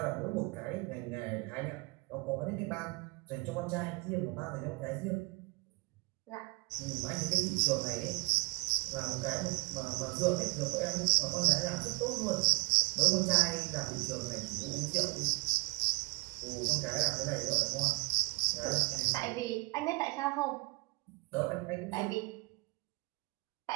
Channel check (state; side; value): quieter; left; 26.8 dB